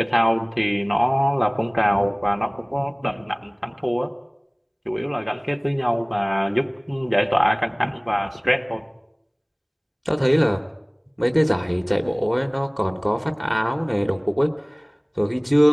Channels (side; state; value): both; identical; correlation 1.00